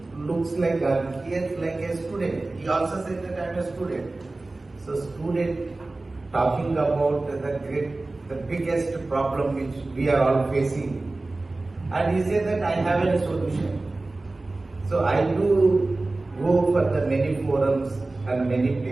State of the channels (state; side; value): quieter; left; 3.1 dB